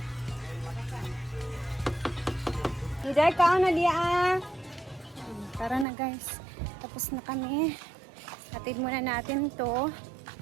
Hiday ka na diya. Tara na guys. Tapos na kami. Hatid muna natin to.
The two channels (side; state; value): left; drops out; at 5.9 s